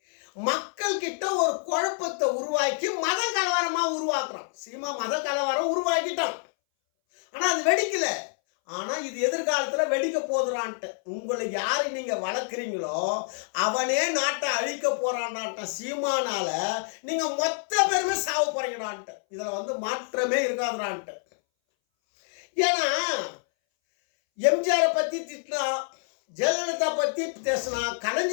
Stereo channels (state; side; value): silent; right; 60 dB below the other